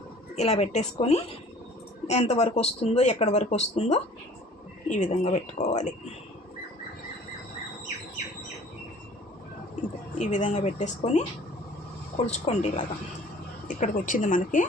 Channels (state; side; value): normal; both; correlation 0.50